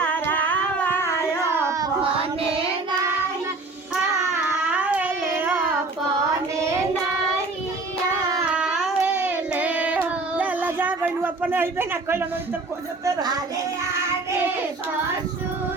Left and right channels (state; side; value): quieter; left; 3.5 dB